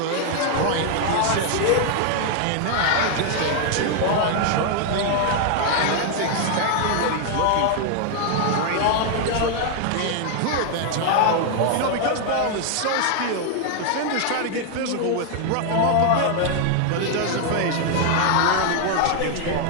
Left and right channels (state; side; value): different; both; correlation 0.00